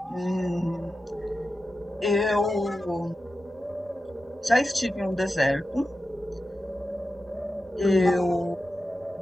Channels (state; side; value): normal; both; correlation 0.91